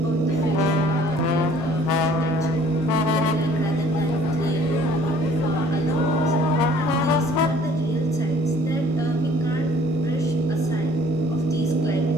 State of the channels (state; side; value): normal; both; correlation 0.54